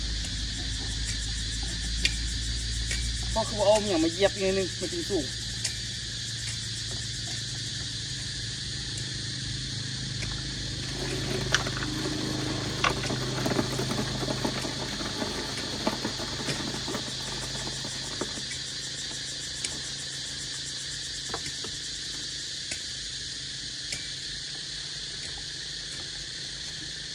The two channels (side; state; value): both; identical; correlation 1.00